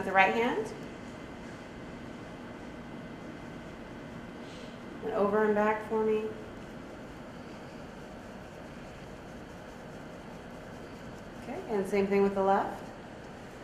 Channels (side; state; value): both; identical; correlation 1.00